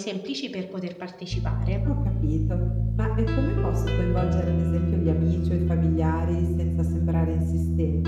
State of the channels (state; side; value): identical; both; correlation 1.00